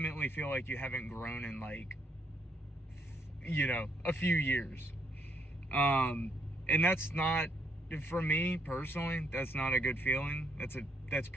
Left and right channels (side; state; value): both; normal; correlation 0.72